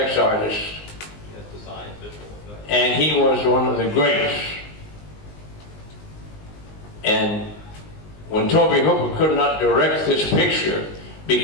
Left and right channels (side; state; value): right; late; 19 ms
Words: artist. And he was one of the greats. And when Toby Hooper could not direct this picture,